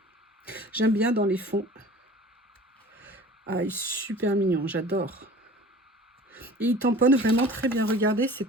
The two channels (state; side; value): normal; both; correlation 0.43